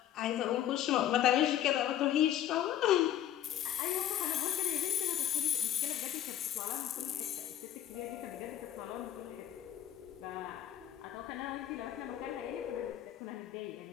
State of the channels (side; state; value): right; quieter; 11.5 dB